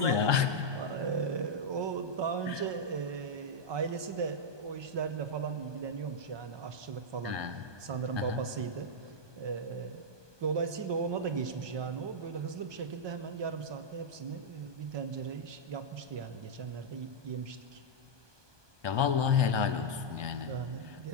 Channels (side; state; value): left; late; 1.2 ms